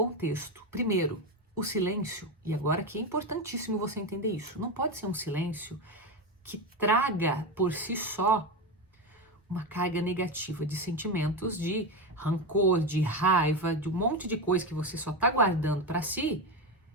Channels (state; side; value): normal; both; correlation 0.16